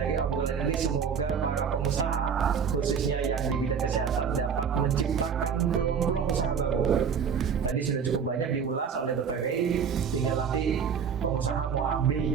obrolan ini semoga para pengusaha khususnya yang di bidang kesehatan dapat menciptakan peluang-peluang usaha baru. Tadi sudah cukup banyak diulas oleh Dr. Rey, tinggal nanti pengusaha mau ambil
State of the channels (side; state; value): left; quieter; 6.7 dB